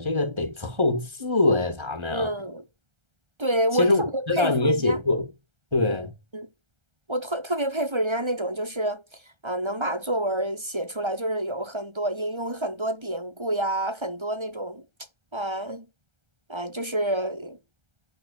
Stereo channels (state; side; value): late; left; 1.3 ms